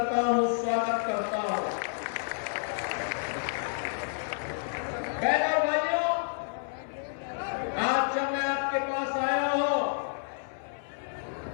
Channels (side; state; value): right; silent; 58 dB below the other